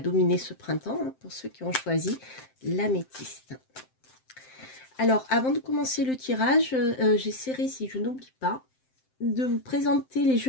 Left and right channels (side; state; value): right; late; 7.7 ms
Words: ce printemps, hein, pour ceux qui ont choisi l'améthyste. Alors, avant de commencer le tirage, j'essaierai, si je n'oublie pas, de vous présenter les